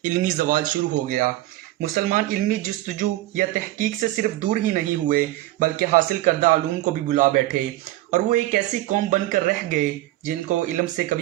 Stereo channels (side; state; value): left; quieter; 16.5 dB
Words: इल्मी ज़वाल शुरू हो गया। मुसलमान इल्मी जस्तजू या तहकीक से सिर्फ दूर ही नहीं हुए बल्कि हासिल करदा आलूम को भी बुला बैठे और वो एक ऐसी कौम बनकर रह गए जिनको इल्म से